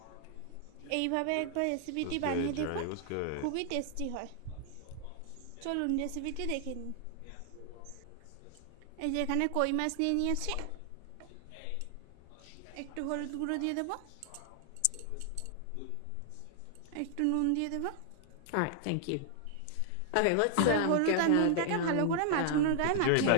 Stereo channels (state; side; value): different; both; correlation 0.00